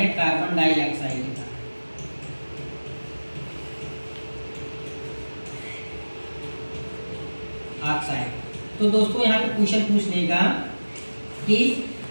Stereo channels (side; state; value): both; inverted; correlation -1.00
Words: कार्बन डाइऑक्साइड का। ऑक्साइड। तो दोस्तों यहाँ पे क्वेश्चन पूछ लेगा कि